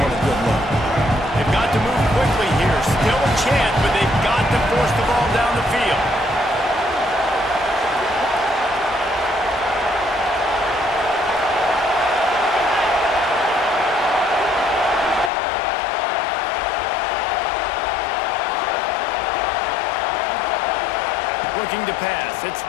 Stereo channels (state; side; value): drops out; right; at 15.3 s